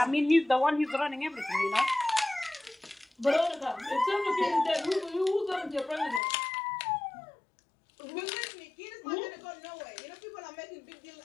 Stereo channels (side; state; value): right; drops out; at 6.2 s